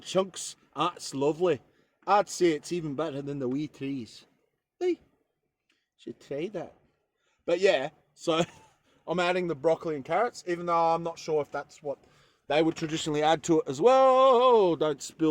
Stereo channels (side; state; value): both; identical; correlation 1.00